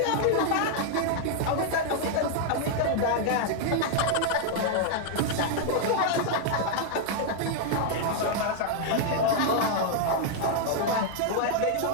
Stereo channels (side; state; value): both; different; correlation 0.00